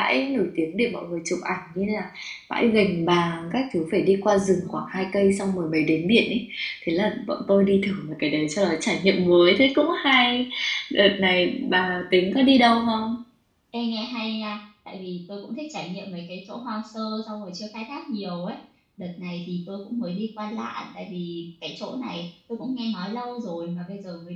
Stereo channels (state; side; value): identical; both; correlation 1.00